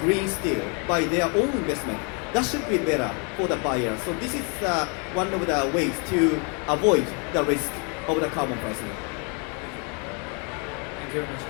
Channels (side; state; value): right; quieter; 35.4 dB